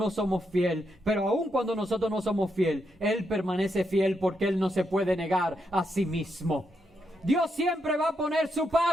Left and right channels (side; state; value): both; normal; correlation 0.81